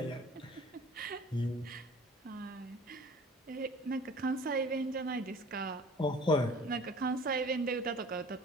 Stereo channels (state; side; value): normal; both; correlation 0.47